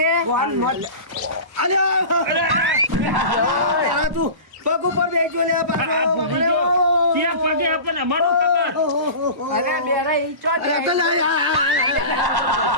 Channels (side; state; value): left; late; 1.1 ms